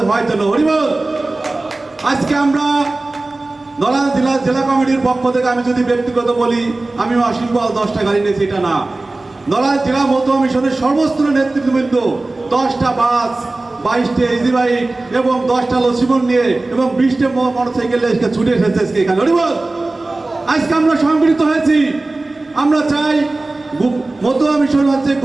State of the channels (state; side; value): quieter; left; 3.1 dB